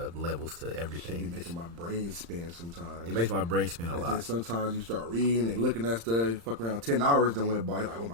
levels to everything. Should be making my brain spin sometimes. It makes my brain spin a and lot. Then sometimes you start reading and looking at stuff. Fuck around 10 hours then went by. You're like, oh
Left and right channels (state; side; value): late; left; 35 ms